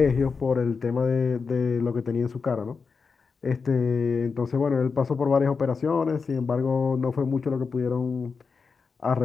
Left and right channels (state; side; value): quieter; right; 5.1 dB